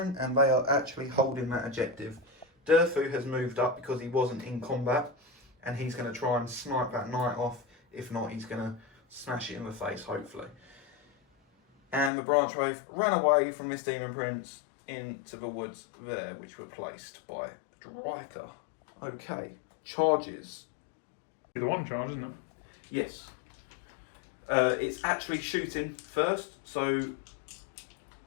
and they are actually holding that objective. Durfu has moved up because he wasn't in combat and he's going to try and snipe that knight off. If not, he's going to smash it in the face, hopefully. And the branch wraith ran away from this demon prince into the woods there, which were placed by Dryker. Okay, charges. The one charge, isn't it? Yes. It's actually shooting first, so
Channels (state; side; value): drops out; right; at 12.1 s